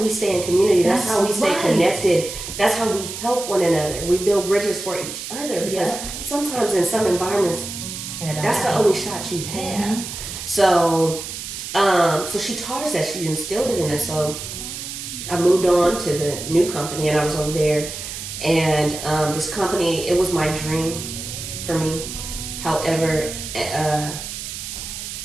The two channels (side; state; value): right; noise; hiss, 8 dB below the sound